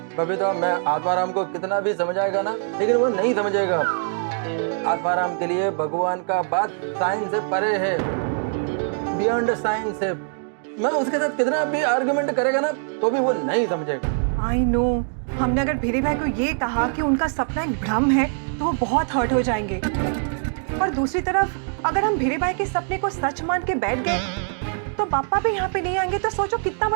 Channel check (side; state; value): left; silent; 63 dB below the other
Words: बबीता, मैं आत्माराम को कितना भी समझाएगा ना, लेकिन वो नहीं समझेगा। आत्माराम के लिए भगवान का बात साइंस से परे है, बियॉन्ड साइंस है। मैं उसके साथ कितना भी आर्गुमेंट करेगा ना तो भी वो नहीं समझेगा। आई नो, हमने अगर भीरे भाई को ये कहा कि उनका सपना एक भ्रम है तो वो बहुत हर्ट हो जाएंगे। और दूसरी तरफ अगर हम भीरे भाई के सपने को सच मान के बैठ गए तो पापा भी यहाँ पे नहीं आएंगे, तो सोचो कितना